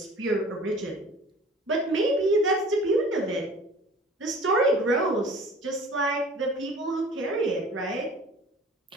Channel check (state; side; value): normal; both; correlation 0.46